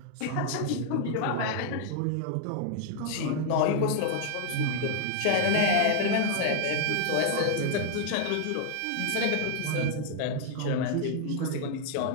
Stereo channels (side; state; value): both; different; correlation 0.00